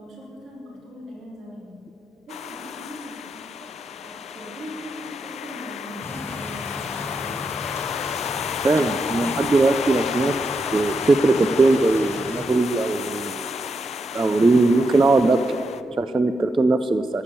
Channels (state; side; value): normal; both; correlation 0.83